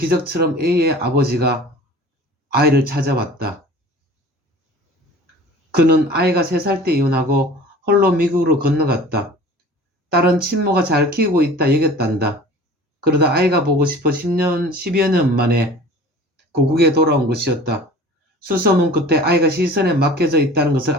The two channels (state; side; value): normal; both; correlation 0.43